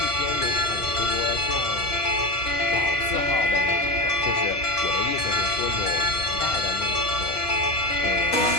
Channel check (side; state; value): right; late; 4.7 ms